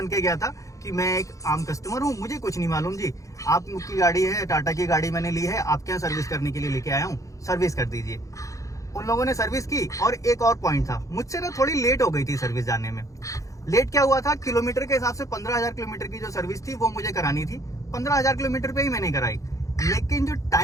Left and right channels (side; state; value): right; late; 0.16 ms